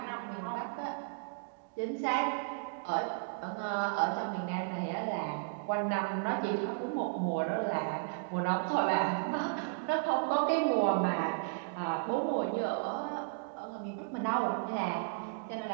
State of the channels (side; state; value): left; quieter; 37.0 dB